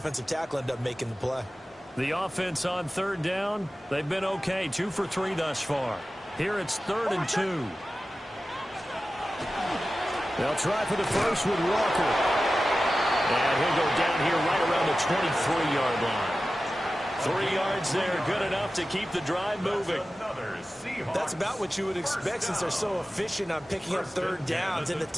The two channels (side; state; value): both; normal; correlation 0.94